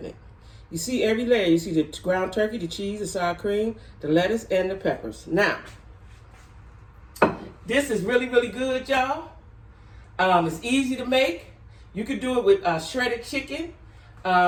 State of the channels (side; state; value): both; identical; correlation 1.00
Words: it. You see every layer. You see the ground turkey, the cheese, the sour cream, the lettuce, and the peppers. Now, this is really, really good, y'all. It's easy to make. You could do it with shredded chicken,